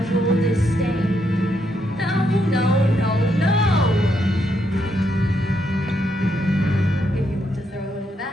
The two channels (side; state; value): both; normal; correlation 0.78